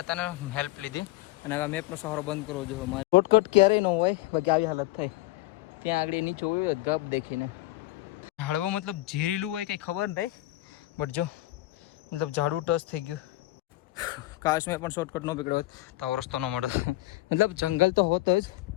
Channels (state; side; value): quieter; right; 17.9 dB